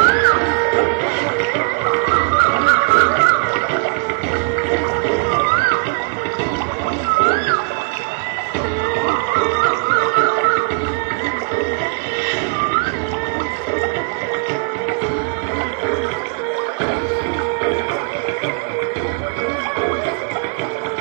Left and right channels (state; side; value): quieter; left; 34.8 dB